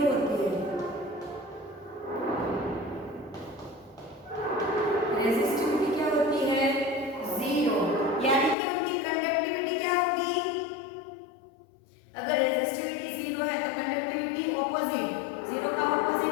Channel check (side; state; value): right; drops out; at 8.6 s